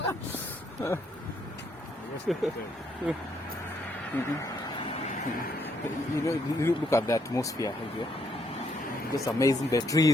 You look at the atmosphere here. Just amazing. The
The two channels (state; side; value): normal; both; correlation 0.72